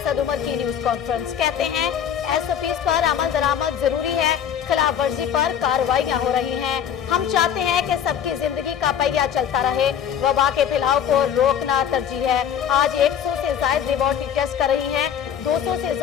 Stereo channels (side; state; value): right; quieter; 8.9 dB